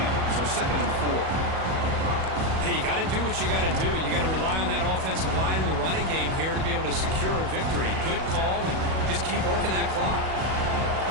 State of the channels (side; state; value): left; late; 37 ms